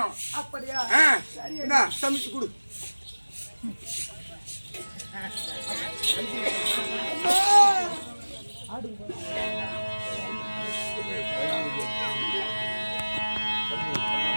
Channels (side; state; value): both; inverted; correlation -1.00